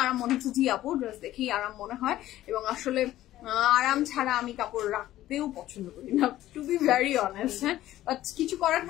আরাম মনে হচ্ছে। জি আপু, ড্রেস দেখেই আরাম মনে হয়, এবং আসলে আরাম ছাড়া আমি কাপড় রাখতেও পছন্দ করি না, টু বি ভেরি অনেস্ট। হ্যাঁ, বাট কিছু করার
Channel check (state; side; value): quieter; right; 14.4 dB